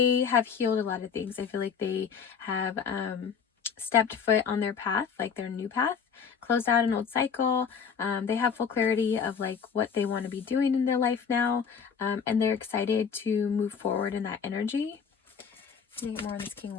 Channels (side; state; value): right; quieter; 6.6 dB